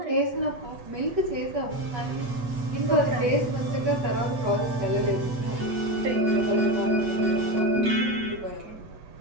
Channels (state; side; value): late; left; 8.2 ms